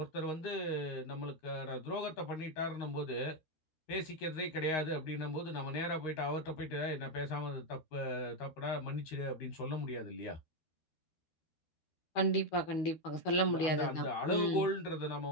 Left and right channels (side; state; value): right; late; 12 ms